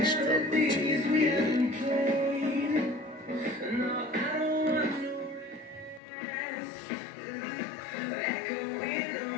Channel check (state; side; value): drops out; right; at 6.0 s